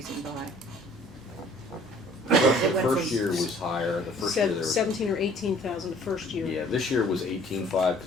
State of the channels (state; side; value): normal; both; correlation 0.55